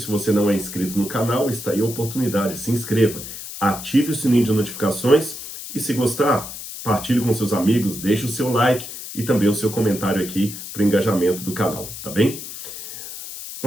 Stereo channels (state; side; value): noise; left; hiss, 10 dB below the sound